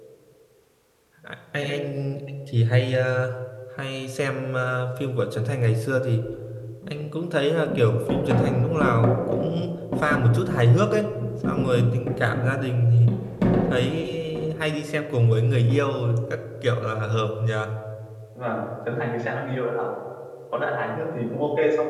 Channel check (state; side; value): identical; both; correlation 1.00